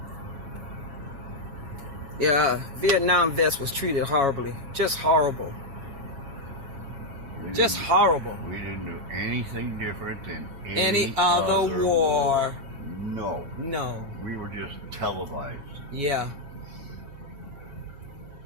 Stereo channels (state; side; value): late; left; 7.2 ms